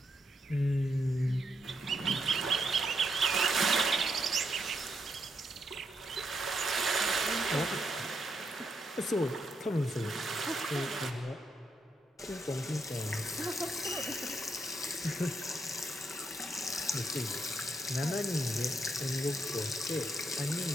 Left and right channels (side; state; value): both; normal; correlation 0.79